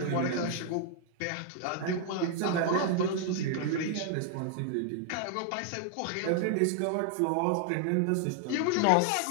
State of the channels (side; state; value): both; different; correlation 0.00